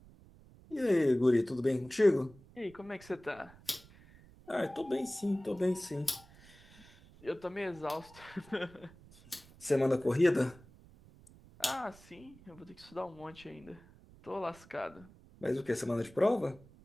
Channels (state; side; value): noise; right; rumble, 23 dB below the sound